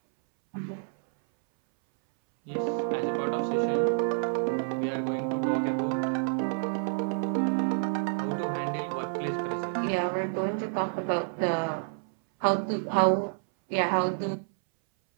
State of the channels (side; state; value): left; silent; 59 dB below the other